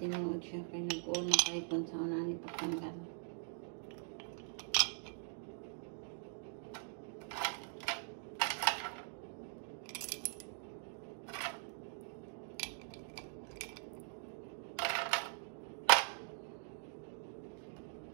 tinuod siya kaya nag-uol na kahit kung sa unani pagtanggal.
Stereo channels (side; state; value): left; silent; digital silence